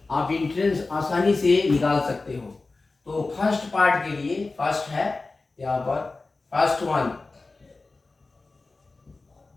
आप एंट्रेंस आसानी से निकाल सकते हो। तो फर्स्ट पार्ट के लिए फर्स्ट है यहाँ पर, फर्स्ट वन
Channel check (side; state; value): right; quieter; 3.6 dB